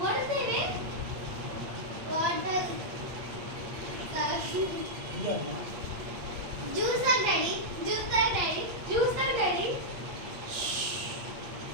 వాటర్ దేవి. వాటర్ ఇదమ్మా జ్యూస్ తాగు డాడీ. జ్యూస్ తాగు డాడీ. జ్యూస్ తాగు డాడీ.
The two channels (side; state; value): left; late; 8.6 ms